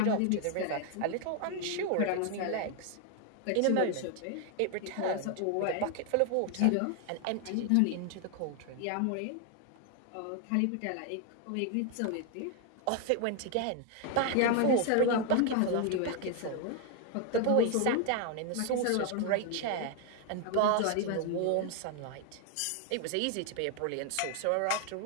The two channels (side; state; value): both; different; correlation 0.00